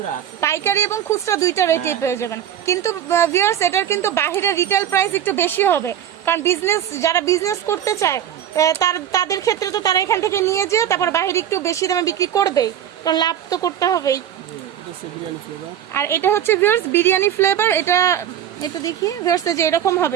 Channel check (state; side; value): quieter; left; 10.2 dB